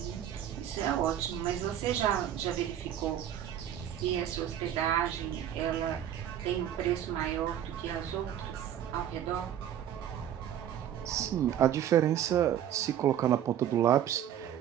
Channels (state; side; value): quieter; left; 10.5 dB